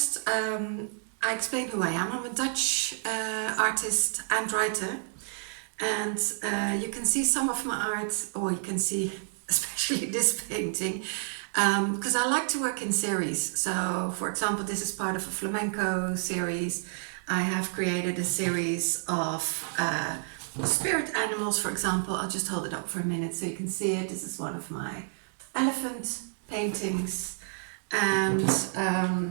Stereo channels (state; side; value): silent; left; digital silence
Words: I explain who I am. I'm a Dutch artist and writer, and you can see some of my art, or you can see especially this painting, because I like to work in series. So, for example, this is part of a flamenco series. I have created a series of spirit animals, for example. I'll just hold it up for a minute so you can see it. This is one of my elephant paintings. And